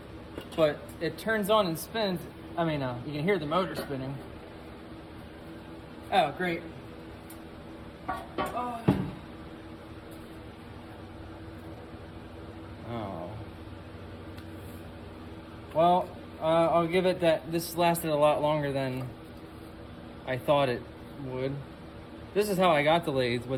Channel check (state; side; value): identical; both; correlation 1.00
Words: but it turns on and spins. I mean, you can hear the motor spinning. Oh, great. Oh. Well, I'll give it that this lasted a lot longer than I thought it would. This is how I got the lathe,